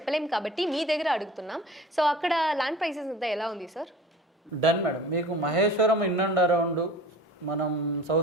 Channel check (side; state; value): both; normal; correlation 0.41